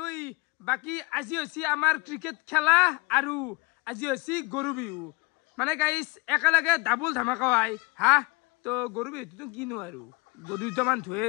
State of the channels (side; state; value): right; quieter; 26.3 dB